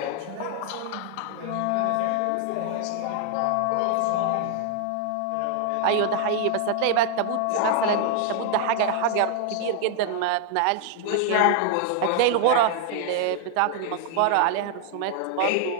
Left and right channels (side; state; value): both; different; correlation 0.00